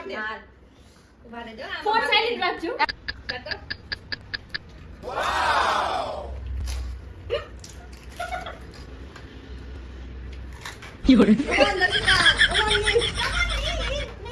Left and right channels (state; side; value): identical; both; correlation 1.00